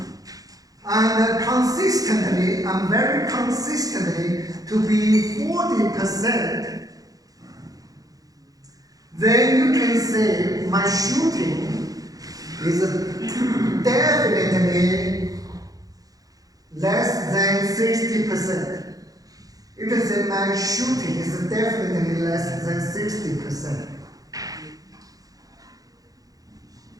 and consistently, and very consistently, to be 40%, then you can say my shooting is definitely less than 60%. You can say my shooting is definitely less than 60%.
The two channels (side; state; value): left; late; 0.17 ms